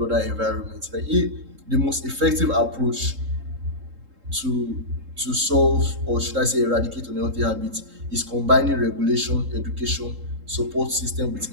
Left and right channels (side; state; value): left; late; 3.7 ms